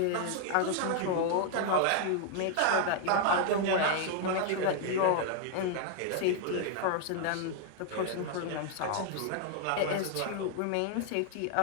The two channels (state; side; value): different; both; correlation 0.00